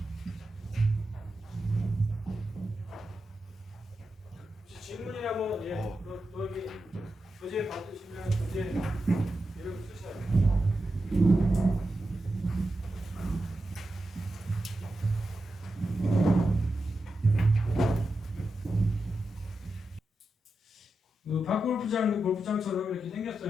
질문이나 뭐 또 여기 교재 받으시면 교재 이름 쓰셔야 돼요. 그 박골프장 골프장처럼 이렇게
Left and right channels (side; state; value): both; normal; correlation 0.89